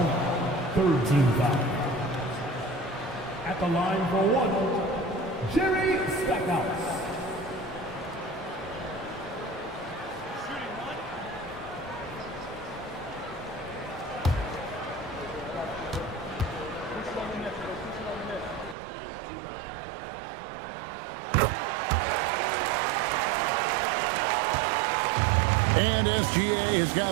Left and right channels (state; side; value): drops out; left; at 18.8 s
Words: third team foul. At the line for one, Jerry Stackhouse. And SGA has